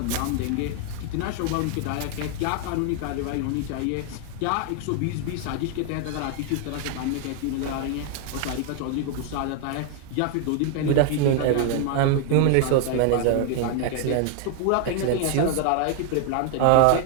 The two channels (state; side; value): different; both; correlation 0.00